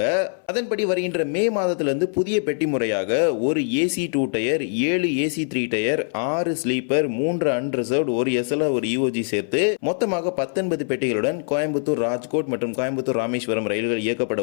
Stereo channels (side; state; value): right; silent; 63 dB below the other